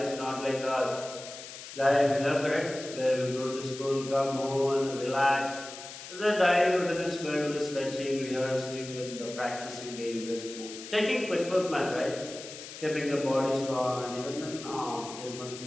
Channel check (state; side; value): noise; left; hiss, 12 dB below the sound